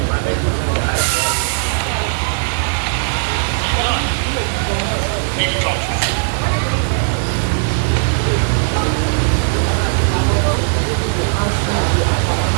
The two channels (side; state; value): left; silent; digital silence